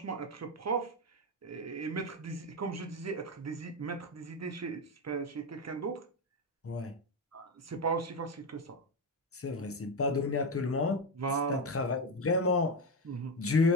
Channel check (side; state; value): both; normal; correlation 0.12